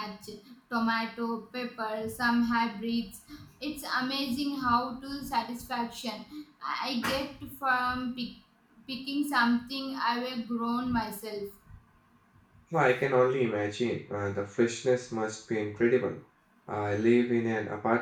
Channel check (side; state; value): both; identical; correlation 1.00